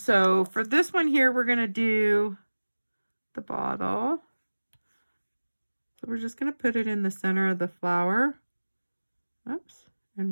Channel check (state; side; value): inverted; both; correlation -1.00